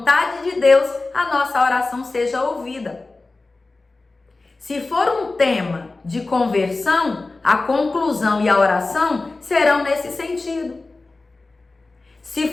de Deus, a nossa oração seja ouvida. Se for um tema de conversão, a conclusão e a oração serão nesse sentido.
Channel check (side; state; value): right; quieter; 3.4 dB